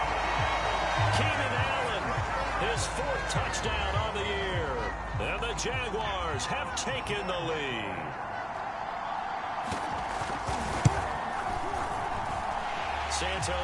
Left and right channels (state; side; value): identical; both; correlation 1.00